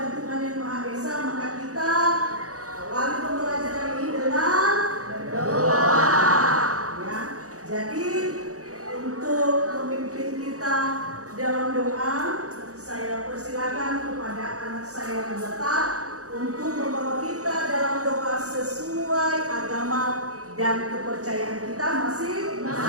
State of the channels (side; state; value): left; late; 0.66 ms